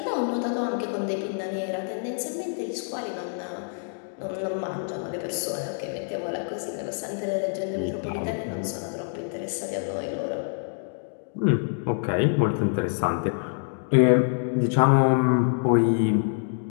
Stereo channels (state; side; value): silent; right; digital silence